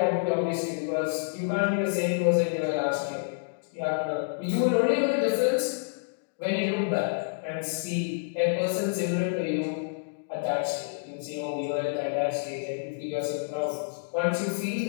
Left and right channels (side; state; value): right; silent; digital silence